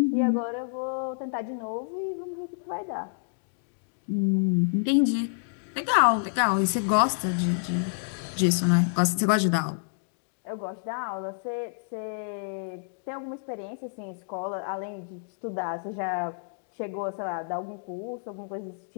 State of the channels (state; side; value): silent; right; digital silence